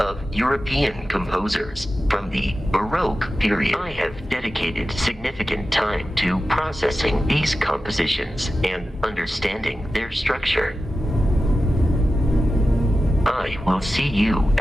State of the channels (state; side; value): normal; both; correlation 0.93